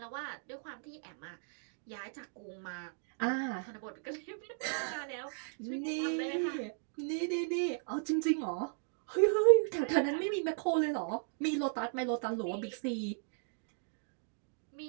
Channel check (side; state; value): left; silent; digital silence